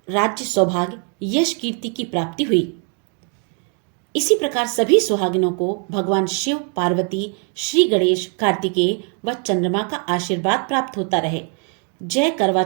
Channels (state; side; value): quieter; left; 40.0 dB